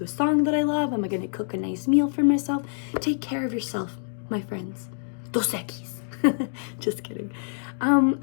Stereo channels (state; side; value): silent; right; digital silence